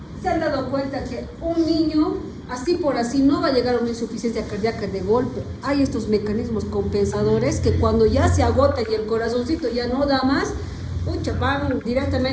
¿Se han dado cuenta que un niño, así por así, no va a llegar a una insuficiencia cardíaca de golpe? Hay estos mecanismos compensadores que cuando ya se agota y el corazoncito ya no da más, van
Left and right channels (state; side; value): identical; both; correlation 1.00